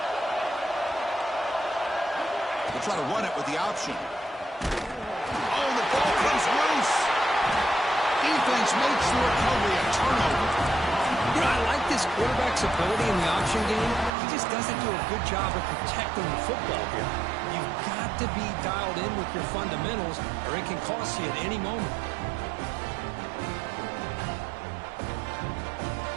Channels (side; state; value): left; drops out; at 14.1 s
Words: They'll try to run it with the option. Oh, the ball comes loose. Defense makes the recovery a turnover. You know, I like this quarterback's ability in the option game. He just doesn't do a good job of protecting the football here. You've got to be dialed in with your fundamentals, or it can cost you at any moment.